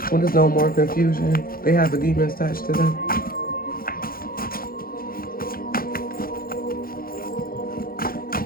When there's no more confusion, they have a demon attached to them.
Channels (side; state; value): right; late; 0.42 ms